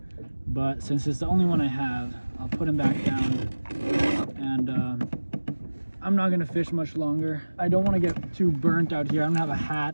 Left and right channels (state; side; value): inverted; both; correlation -1.00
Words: but since it's the only one I have, I'll put him back down, and I'm not gonna fish much longer. I don't want to get too burnt out here. I don't have a